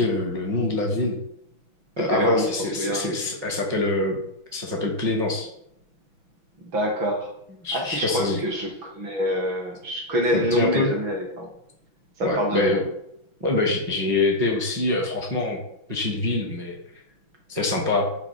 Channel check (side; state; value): left; late; 6.0 ms